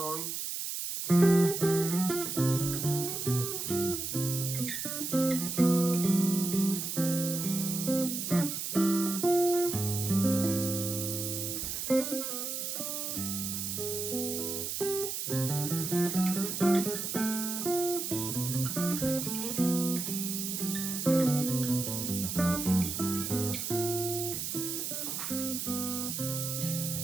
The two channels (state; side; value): noise; right; hiss, 3 dB below the sound